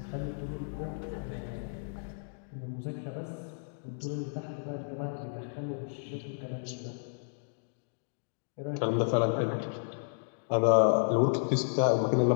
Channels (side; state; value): right; silent; digital silence